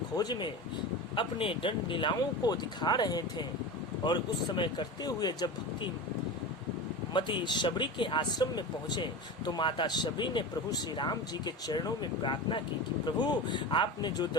में अपने दंड लीलाओं को दिखा रहे थे और उस समय करते हुए जब भक्ति मती शबरी के आश्रम में पहुंचे तो माता शबरी ने प्रभु श्री राम जी के चरणों में प्रार्थना की कि प्रभु आपने जो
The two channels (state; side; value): normal; both; correlation 0.27